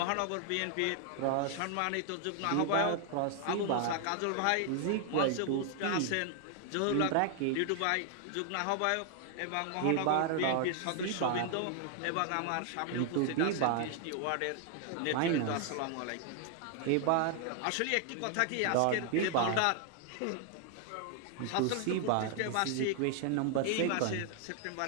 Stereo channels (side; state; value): both; different; correlation 0.00